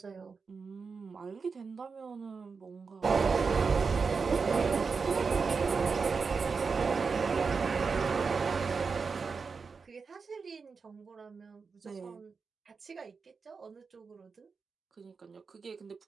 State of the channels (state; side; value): quieter; left; 5.1 dB